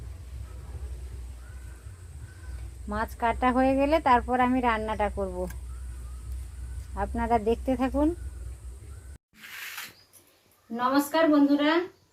মাছ কাটা হয়ে গেলে তারপর আমি রান্নাটা করব, আপনারা দেখতে থাকুন। নমস্কার বন্ধুরা,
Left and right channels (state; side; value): identical; both; correlation 1.00